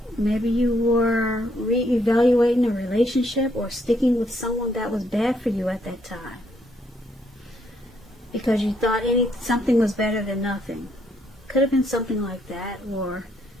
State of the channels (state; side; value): normal; both; correlation 0.73